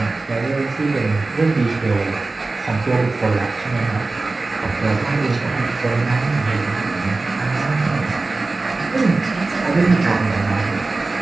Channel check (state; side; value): quieter; left; 3.4 dB